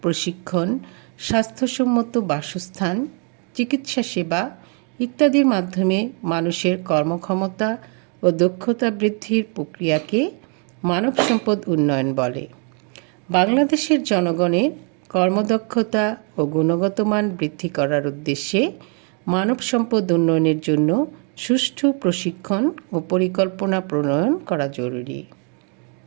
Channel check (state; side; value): quieter; left; 38.9 dB